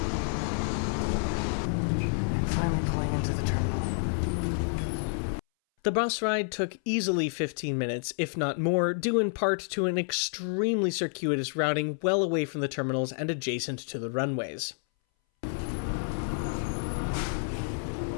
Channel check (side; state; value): right; silent; 58 dB below the other